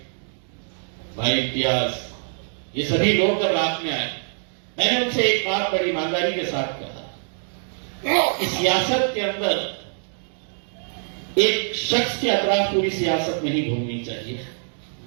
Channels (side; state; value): left; silent; digital silence